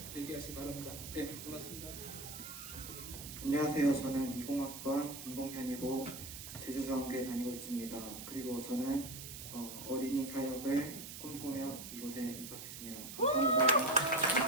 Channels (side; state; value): right; noise; hiss, 10 dB below the sound